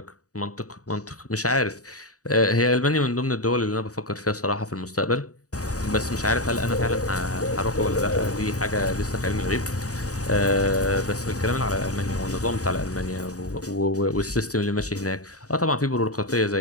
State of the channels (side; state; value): right; late; 0.66 ms